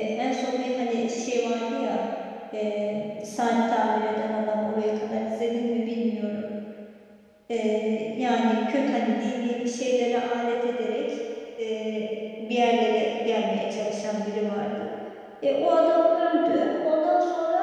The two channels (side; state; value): both; identical; correlation 1.00